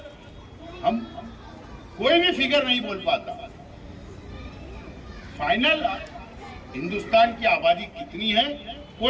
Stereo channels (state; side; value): identical; both; correlation 1.00